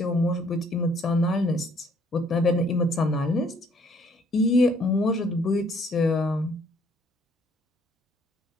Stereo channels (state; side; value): normal; both; correlation 0.63